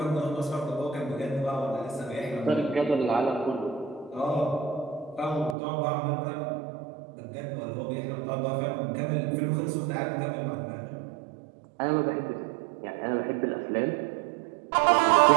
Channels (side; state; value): left; drops out; at 5.6 s